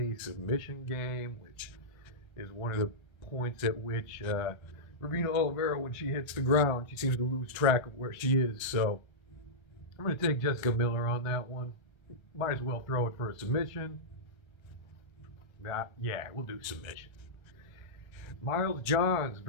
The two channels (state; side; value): late; right; 1.3 ms